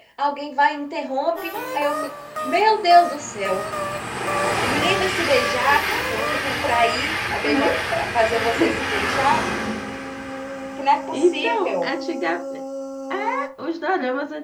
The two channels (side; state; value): both; identical; correlation 1.00